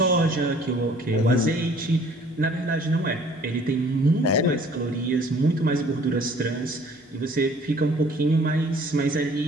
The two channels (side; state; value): both; normal; correlation 0.54